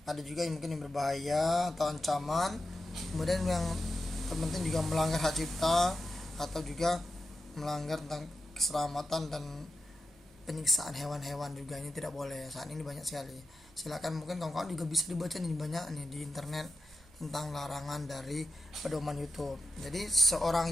ada juga yang mungkin yang berbahaya atau ancaman. Kemudian yang terpenting juga melanggar hak cipta atau juga melanggar tentang keselamatan dan penyiksaan hewan-hewan juga, ini tidak boleh. Saat ini banyak sekali. Silakan, mungkin kawan-kawan juga bisa dibaca nih, banyak nih di internet tentang larangan dari pedoman YouTube. Jadi seorang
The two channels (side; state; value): both; normal; correlation 0.91